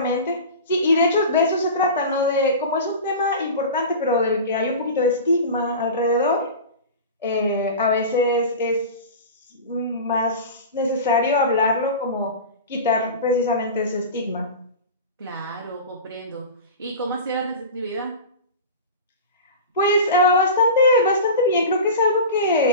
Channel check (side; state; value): both; inverted; correlation -0.31